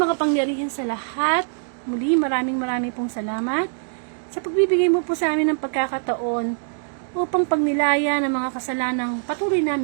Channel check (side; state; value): left; silent; digital silence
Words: sa lahat, muli maraming pong salamat sa pagbibigay mo po sa amin ng pagkakataon upang pagnilaya ng mga kasalanang patuloy